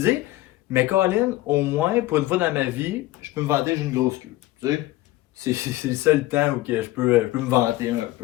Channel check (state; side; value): quieter; right; 17.1 dB